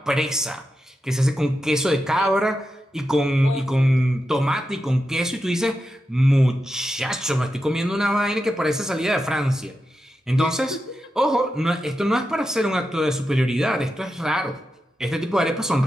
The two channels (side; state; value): both; normal; correlation 0.89